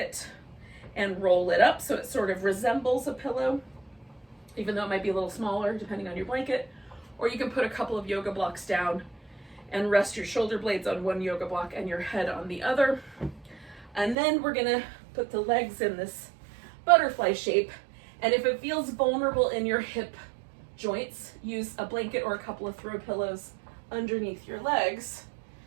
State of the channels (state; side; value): drops out; left; at 14.2 s